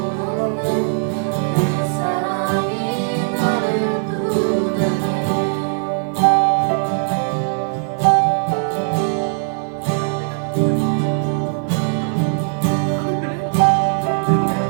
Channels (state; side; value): silent; left; 63 dB below the other